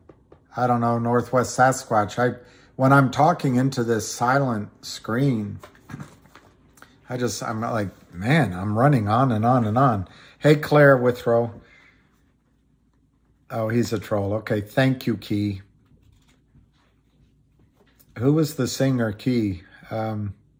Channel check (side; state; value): both; identical; correlation 1.00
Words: I don't know, Northwest Sasquatch. When I'm talking into this silent screen, I'm like, man, I'm running on and on and on. Hey, Claire Withrow. Oh, he's a troll. Okay, thank you, Key. Who was the singer, Key?